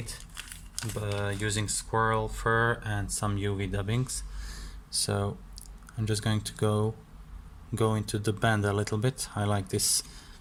using squirrel fur and some UV dubbings. So I'm just going to go into the bend a little bit. I like this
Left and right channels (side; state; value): both; identical; correlation 1.00